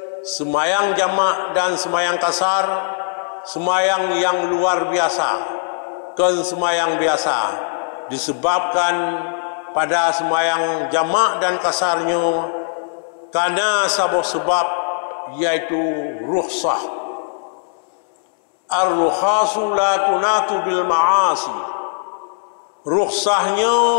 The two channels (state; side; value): silent; right; digital silence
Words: semayang jamak dan semayang kasar semayang yang luar biasa. Kan semayang biasa disebabkan pada semayang jamak dan kasarnya karena sebab yaitu rukhsah. Ar-rukhasu la tunatu bil ma'asi. Rukhsahnya